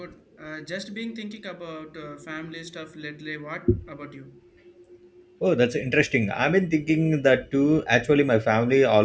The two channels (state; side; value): identical; both; correlation 1.00